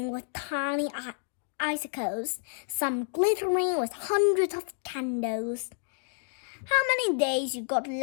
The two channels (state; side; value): silent; right; 58 dB below the other